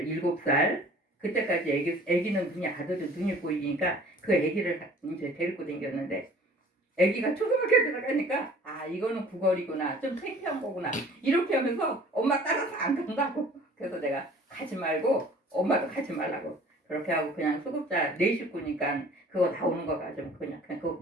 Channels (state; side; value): normal; both; correlation 0.50